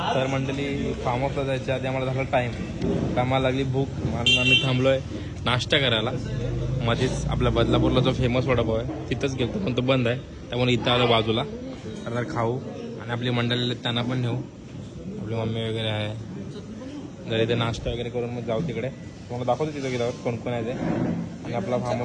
तर मंडळी फार्म हाऊसला जायच्या आधी आम्हाला झाला टाइम, आम्हाला लागली भूक. आम्ही थांबलोय नाश्ता करायला. मध्येच आपल्या बदलापूरला जो फेमस वडापाव आहे तिथंच गेलो, पण तो बंद आहे. त्यामुळे इथं आलो बाजूला. तर खाऊ आणि आपली मंडळी त्यांना पण नेऊ. आपली मम्मी वगैरे आहे जर इथे नाश्ता वगैरे करून मग जाऊ तिकडे. तुम्हाला दाखवतो तिथं गेल्यावर कोण कोण आहे ते, आणि आपला फार्म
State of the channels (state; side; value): identical; both; correlation 1.00